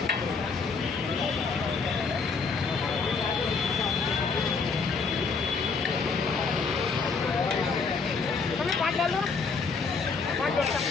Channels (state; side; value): quieter; right; 4.8 dB